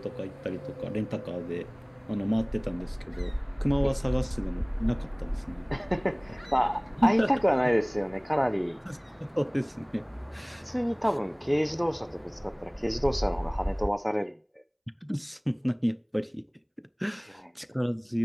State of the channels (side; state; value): both; identical; correlation 1.00